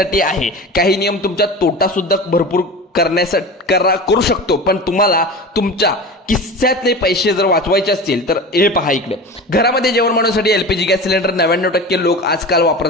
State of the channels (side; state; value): both; normal; correlation 0.32